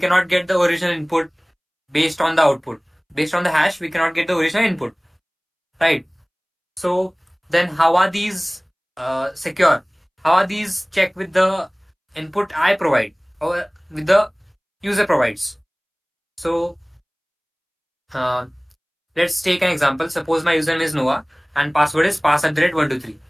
get the original input based on the output. Based on the hash, we cannot get the original input. Right? So then how are these secure? How are these checked with the input I provide or with the user provides? So uh, let's take an example. Suppose my username is Noah and password is pass@123,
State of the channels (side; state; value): both; identical; correlation 1.00